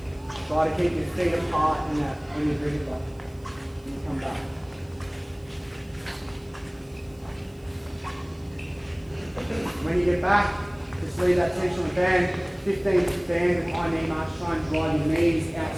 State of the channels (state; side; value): noise; right; hiss, 30 dB below the sound